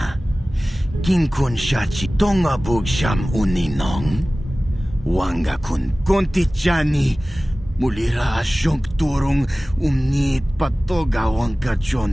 Kin kun shachi tonga bug sham uninong? Wanga kun kontichani. Mulira shonk turung umnit patoga wangka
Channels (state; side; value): normal; both; correlation 0.97